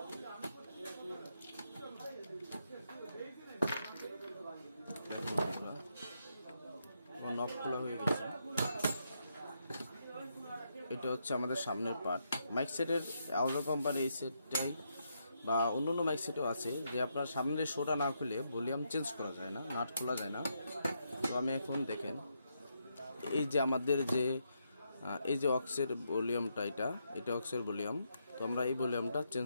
নব খোলা হয়ে গেছে। এটা হচ্ছে আমাদের সামনের পার্ট। মাইক সেটের আহুজা কোম্পানির এই সেটটাই বা অন্য মাইক সেটও আছে, যে আপনার সামনের শোটা না খুলে ভলিউম চেঞ্জ করা যায় না, নাট খোলা যায় না। তো আমি এখন দেখেন এই যে আমাদের এই যে অক্সের ভলিউমটা, এটা অক্সের ভলিউম। তো আমরা এই ভলিউমটা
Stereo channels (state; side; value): inverted; both; correlation -0.80